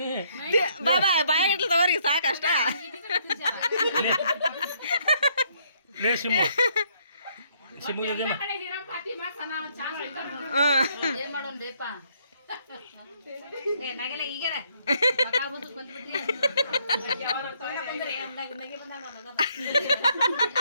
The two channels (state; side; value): inverted; both; correlation -0.69